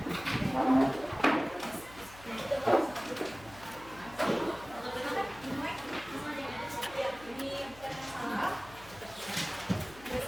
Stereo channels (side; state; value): left; noise; hum, 20 dB below the sound